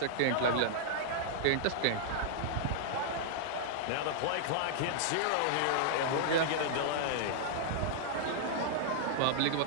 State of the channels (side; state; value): both; different; correlation -0.01